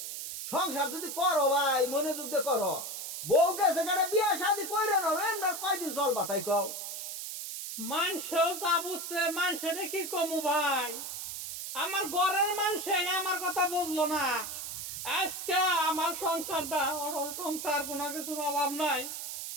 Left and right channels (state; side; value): noise; right; hiss, 6 dB below the sound